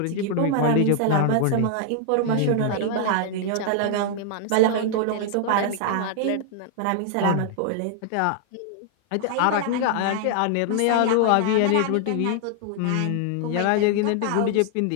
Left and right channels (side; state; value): both; different; correlation 0.00